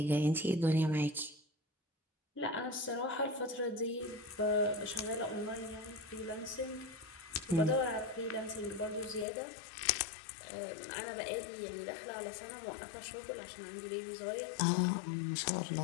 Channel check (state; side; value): drops out; right; at 9.2 s